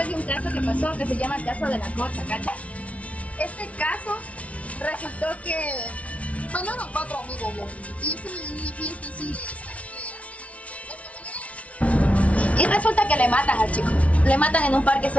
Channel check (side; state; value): right; late; 0.065 ms